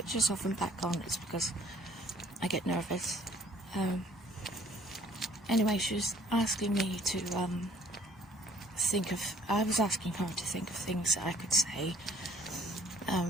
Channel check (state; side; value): normal; both; correlation 0.58